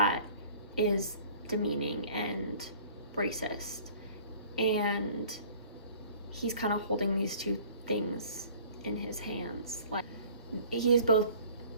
is demeaning and racist. And he's kind of holding these two things in his hands. Like, he's both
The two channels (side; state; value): both; inverted; correlation -0.51